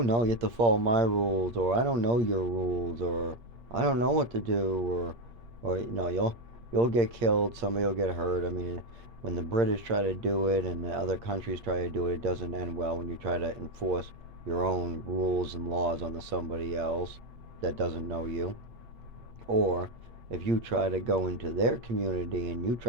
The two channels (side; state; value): left; late; 8.6 ms